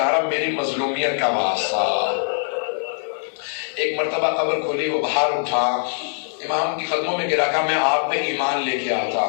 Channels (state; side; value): silent; right; digital silence